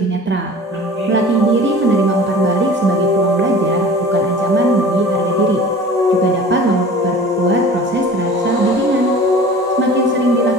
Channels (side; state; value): both; normal; correlation 0.42